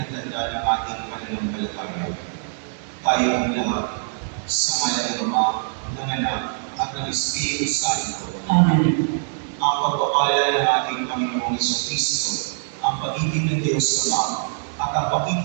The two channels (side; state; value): left; silent; digital silence